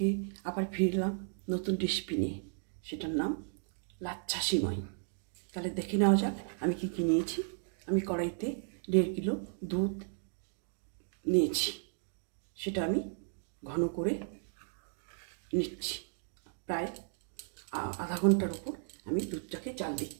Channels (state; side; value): silent; left; digital silence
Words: আবার ফিরলাম নতুন রেসিপি নিয়ে, সেটার নাম লাচ্ছা সিমাই। তাহলে দেখে নেওয়া যাক আমি কি কি নিয়েছি। আমি কড়াইতে 1.5 কিলো দুধ নিয়েছি, সেটা আমি ঘন করে নিচ্ছি। প্রায় আধা ঘন্টার উপর আমি দুধটাকে জাল